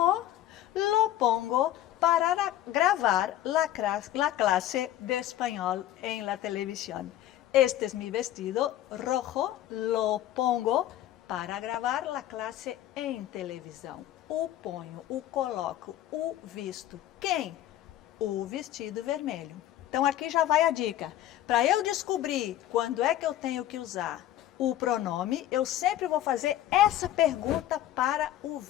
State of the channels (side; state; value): right; quieter; 12.9 dB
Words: lo pongo para grabar la clase de español en la televisión. Este es mi vestido rojo, lo pongo para gravar la clase em televisão. O ponho, o coloco, o visto. Quem? O vestido vermelho. Então, aqui já vai a dica. Para eu descobrir quando é que eu tenho que usar o pronome, eu sempre vou fazer essa pergunta para o